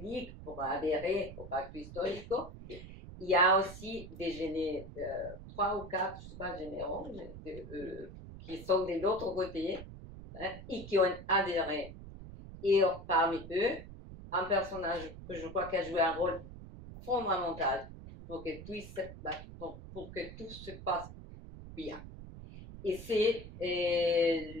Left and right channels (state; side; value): noise; right; rumble, 13 dB below the sound